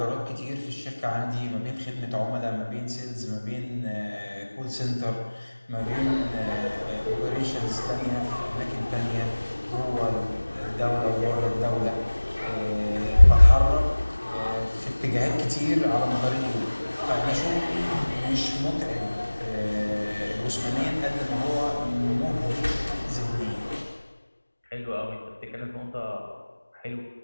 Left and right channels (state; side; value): inverted; both; correlation -1.00